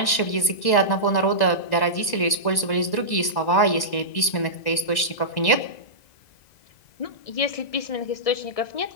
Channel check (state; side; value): late; right; 1.9 ms